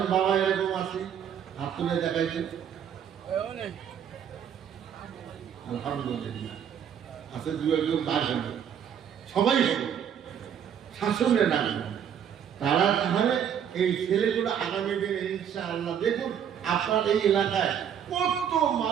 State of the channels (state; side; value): quieter; left; 8.7 dB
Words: বাবা এরকম আছে? হাত তুলে দেখাইছে, আলহামদুলিল্লাহ আছে, দু একজন বাইরে, সবাই হবে। শাসনে নামবে, তারা তাহলে এই ছেলেগুলো আগামী দিনে ইনশাআল্লাহ দেখুন আপনার এই এলাকায় কত